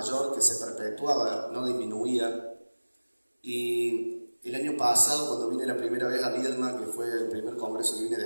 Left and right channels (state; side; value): inverted; both; correlation -1.00